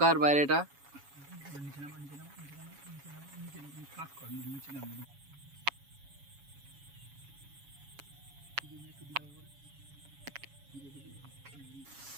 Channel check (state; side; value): late; left; 7.1 ms